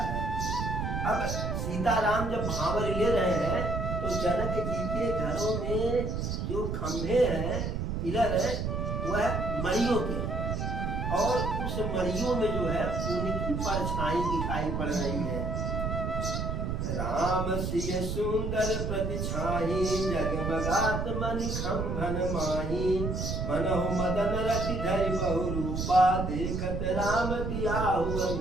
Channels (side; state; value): right; noise; rumble, 2 dB below the sound